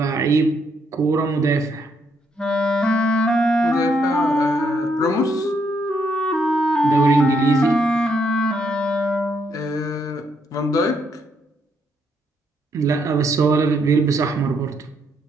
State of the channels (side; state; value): both; normal; correlation 0.74